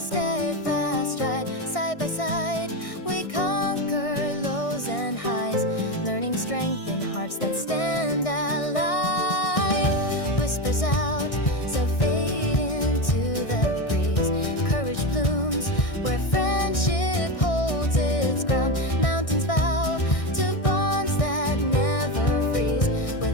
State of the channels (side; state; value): right; late; 1.6 ms